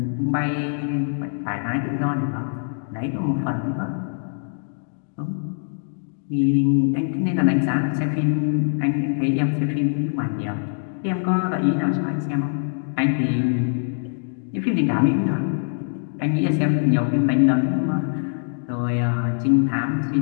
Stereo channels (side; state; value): right; silent; digital silence